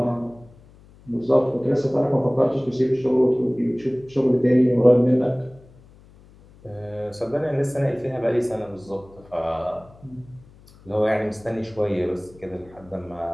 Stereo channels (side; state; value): left; noise; hum, 25 dB below the sound